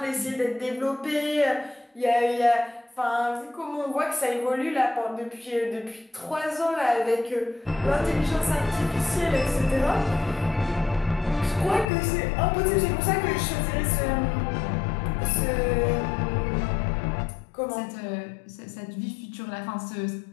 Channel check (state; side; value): drops out; right; at 11.9 s